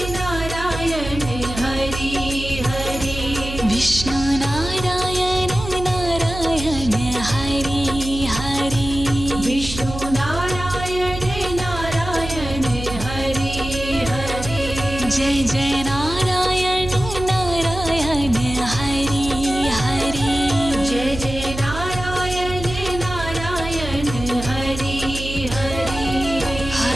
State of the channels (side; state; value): right; noise; hum, 8 dB below the sound